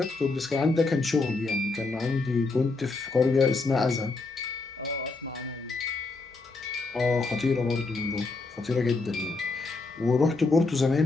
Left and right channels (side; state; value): right; quieter; 3.6 dB